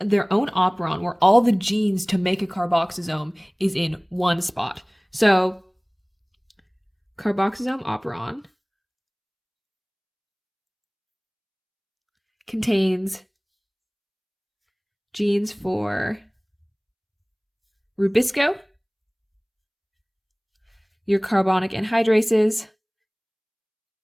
own operon where all the genes to make a carboxysome is in one spot. So carboxysome operon contains genes for RuBisCO, your carbonic anhydrases,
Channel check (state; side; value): identical; both; correlation 1.00